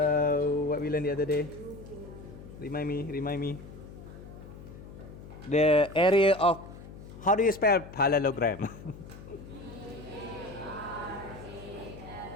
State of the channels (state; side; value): noise; left; hum, 15 dB below the sound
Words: we learned the other day? Remind me. The area of, how do you spell parallelogram?